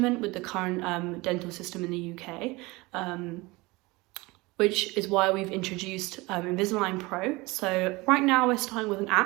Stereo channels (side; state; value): left; quieter; 23.0 dB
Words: with the current dental system in the UK. Which is why we've introduced InvisalignPRO. So right now we're starting with an